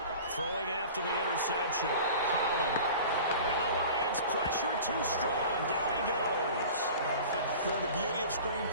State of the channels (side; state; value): both; inverted; correlation -0.40